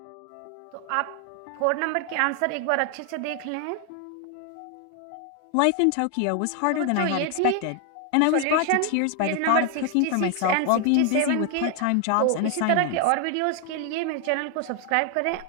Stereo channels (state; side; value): different; both; correlation 0.00